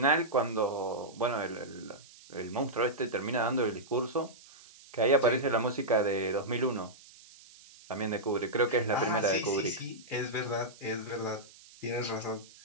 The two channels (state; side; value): noise; right; hiss, 22 dB below the sound